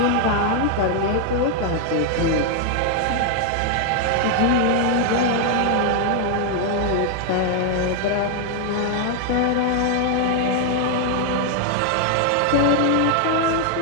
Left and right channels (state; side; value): different; both; correlation 0.00